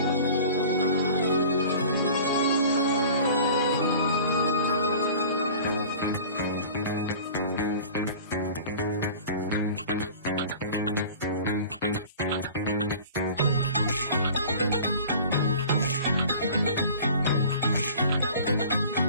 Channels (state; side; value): inverted; both; correlation -0.43